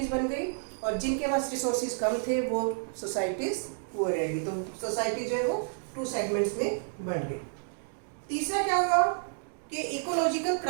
बन गई, और जिनके पास रिसोर्सेज कम थे वो सोसाइटीज़ पुअर रह गई। तो सोसाइटी जो है वो टू सेगमेंट्स में बन गई। तीसरा क्या हुआ कि इकोलॉजिकल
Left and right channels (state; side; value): silent; left; digital silence